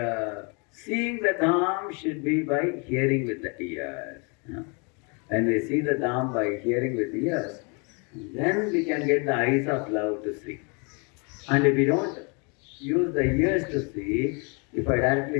seeing the Dham should be by hearing with the ears. When we see the Dham by hearing with the ears, then we can get the eyes of love to see. And if we don't use the ears to see, if I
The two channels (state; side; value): quieter; right; 33.4 dB